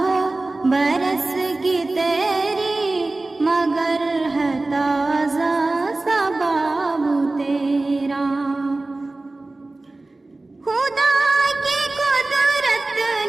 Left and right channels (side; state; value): left; quieter; 3.1 dB